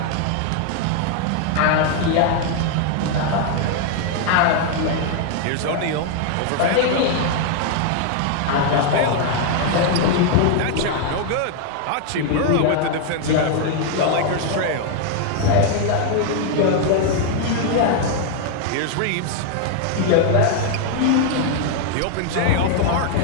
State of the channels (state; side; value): different; both; correlation 0.00